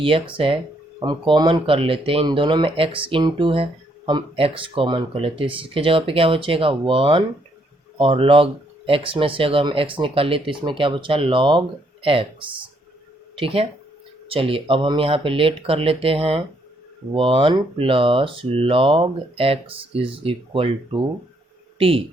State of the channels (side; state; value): both; normal; correlation 0.71